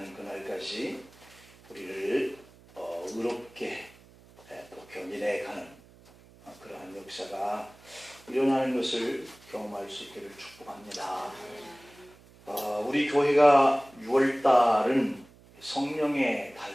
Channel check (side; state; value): right; noise; hum, 25 dB below the sound